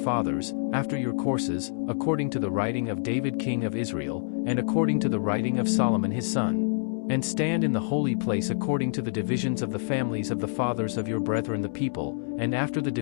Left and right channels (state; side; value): silent; right; 60 dB below the other